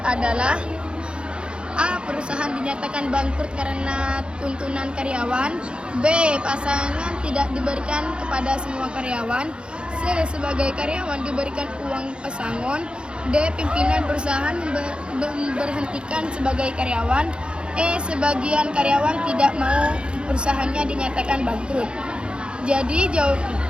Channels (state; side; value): late; left; 0.054 ms